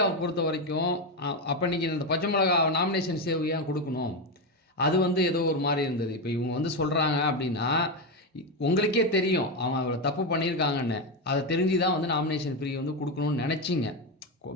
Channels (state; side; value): normal; both; correlation 0.11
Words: பொறுத்த வரைக்கும் அப்போ நீங்கள் இந்த பச்சை மிளகா நாமினேஷன் சேவ் ஏன் கொடுக்கணும், அது வந்து ஏதோ ஒரு மாதிரி இருந்தது. இப்போ இவங்க வந்து சொல்கிறாங்க அப்படின்னா உங்களுக்கே தெரியும் அவங்க அவ்வளோ தப்பு பண்ணியிருக்காங்கன்னு, அதை தெரிஞ்சு தான் வந்து நாமினேஷன் ஃப்ரீ வந்து கொடுக்கணும்னு நினச்சிங்க.